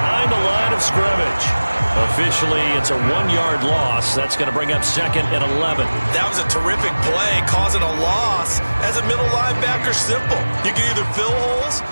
the line of scrimmage. Officially, it's a 1-yard loss. That's going to bring up 2nd and 11. That was a terrific play, causing a loss. As a middle linebacker, simple. You can either fill holes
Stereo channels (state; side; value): inverted; both; correlation -1.00